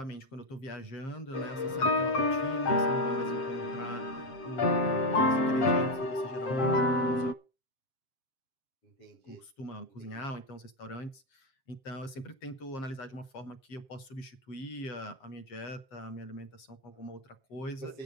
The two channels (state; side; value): late; right; 7.5 ms